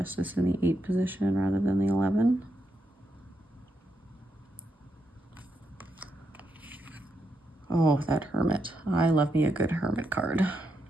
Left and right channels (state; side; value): normal; both; correlation 0.82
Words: in the 8 position rather than the 11. Oh, that Hermit. I love me a good Hermit card.